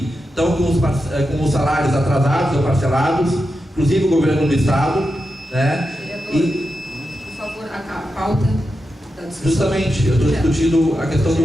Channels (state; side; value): normal; both; correlation 0.89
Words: estão com os salários atrasados ou parcelados, inclusive o governo do estado, né? Por favor, a pauta da discussão. Justamente, eu estou discutindo a questão